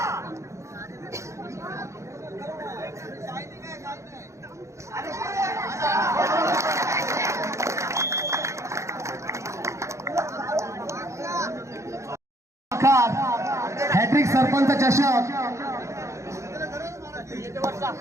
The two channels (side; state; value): left; late; 0.14 ms